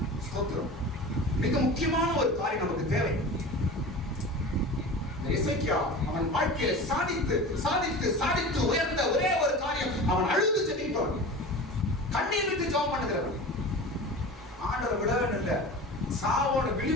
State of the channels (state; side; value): normal; both; correlation 0.34